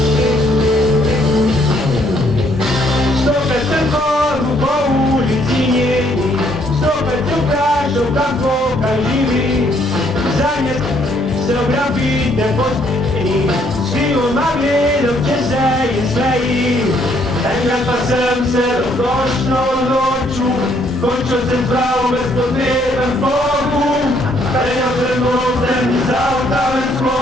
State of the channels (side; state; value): both; normal; correlation 0.68